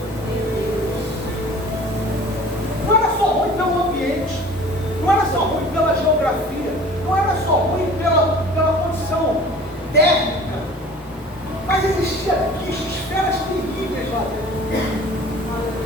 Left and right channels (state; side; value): normal; both; correlation 0.45